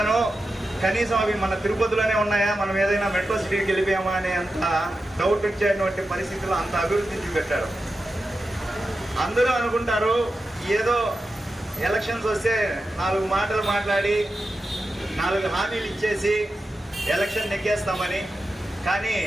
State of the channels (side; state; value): both; normal; correlation 0.91